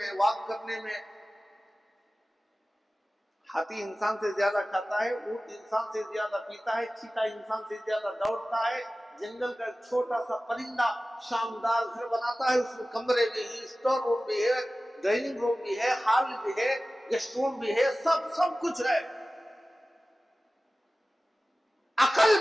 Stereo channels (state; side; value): normal; both; correlation 0.96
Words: वॉक करने में हाथी इंसान से ज्यादा खाता है, ऊंट इंसान से ज्यादा पीता है, चीता इंसान से ज्यादा दौड़ता है। जंगल का छोटा सा परिंदा शानदार घर बनाता है, उसमें कमरे भी है, स्टोर रूम भी है, डाइनिंग रूम भी है, हॉल भी है, गेस्ट रूम भी है, सब कुछ है। अकल